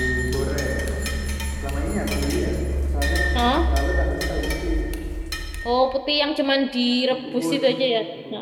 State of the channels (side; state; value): both; identical; correlation 1.00